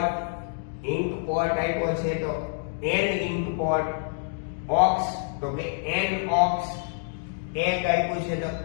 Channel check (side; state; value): right; silent; digital silence